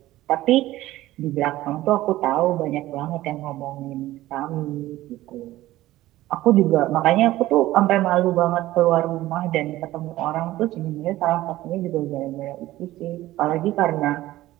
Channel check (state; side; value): quieter; left; 16.0 dB